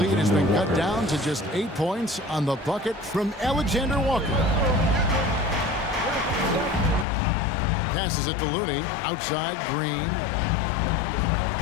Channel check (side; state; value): right; drops out; at 7.1 s